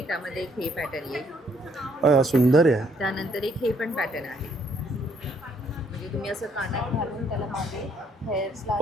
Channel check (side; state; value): both; normal; correlation 0.67